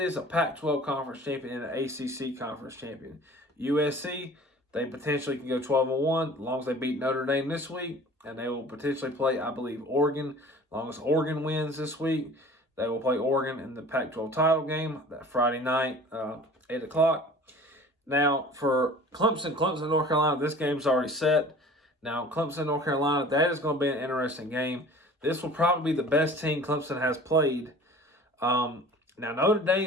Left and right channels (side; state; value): both; normal; correlation 0.44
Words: a Pac-12 conference champion and an ACC conference champion. USC, they potentially can go 12-1 as long as they beat Notre Dame this week, and they will potentially play, I believe, Oregon. As long as Oregon wins this week, they will play Oregon in the Pac-12 title game that Friday night, 8 o'clock. Now, for Clemson, North Carolina, this game's already set. Now, Clemson, North Carolina, that is going to be an interesting game. This will probably be the best team Clemson has played. Now, Notre